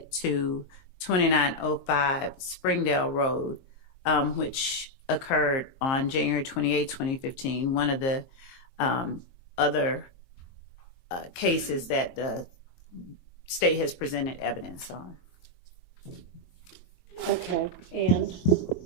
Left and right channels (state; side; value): late; right; 22 ms